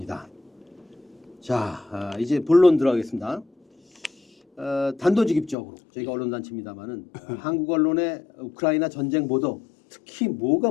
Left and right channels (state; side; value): drops out; right; at 5.6 s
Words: 자, 이제 본론 들어가겠습니다. 단도직입적으로 저희가 언론단체입니다만은 한국 언론의 우크라이나 전쟁 보도 특히 뭐가